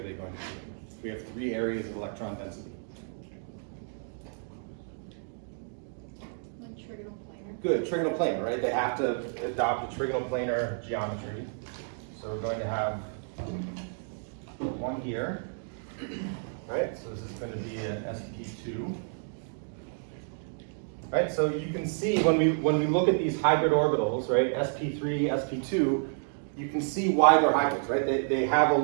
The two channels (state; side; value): silent; left; digital silence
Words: they going to be in? We have 3 areas of electron density. Good, trigonal planar, right? They have to adopt a trigonal planar geometry. So we're going to have one here, right? So this is going to be an sp2. Right, so you can see when we look at these hybrid orbitals, right, sp3, sp2, you can see why they're hybrids, right? They have a